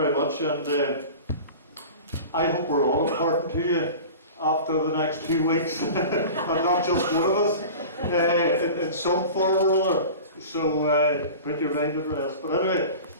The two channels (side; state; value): both; inverted; correlation -0.36